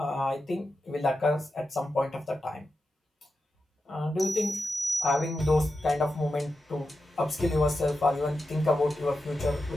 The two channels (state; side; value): normal; both; correlation 0.89